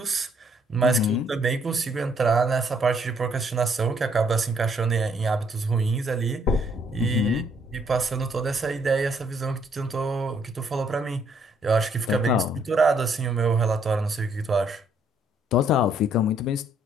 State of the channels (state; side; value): normal; both; correlation 0.68